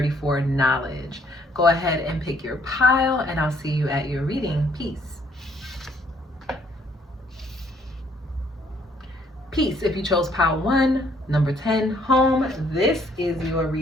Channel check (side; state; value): both; normal; correlation 0.65